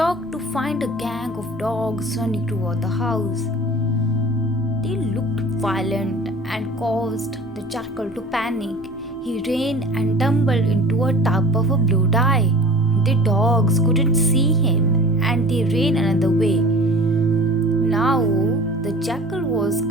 to find a gang of dogs running toward the house. They looked violent and caused the jackal to panic. He ran and tumbled into a tub of a blue dye. The dogs couldn't see him and they ran another way. Now the jackal was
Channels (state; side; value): normal; both; correlation 0.42